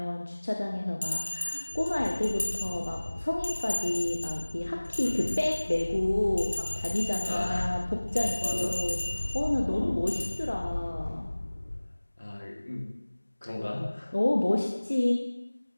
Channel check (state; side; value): inverted; both; correlation -1.00